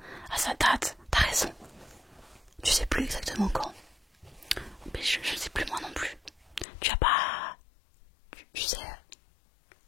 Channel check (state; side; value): drops out; right; at 6.7 s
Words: Ah, ça date, t'as raison. Tu sais plus exactement quand. Mais je sais plus moi non plus. Tu as pas... Tu